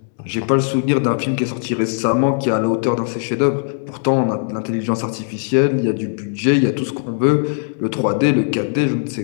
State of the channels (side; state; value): right; silent; 67 dB below the other